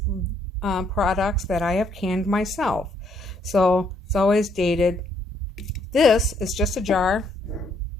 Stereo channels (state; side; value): normal; both; correlation 0.70